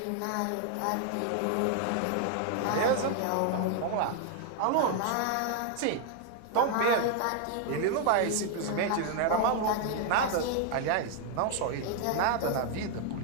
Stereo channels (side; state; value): both; different; correlation 0.00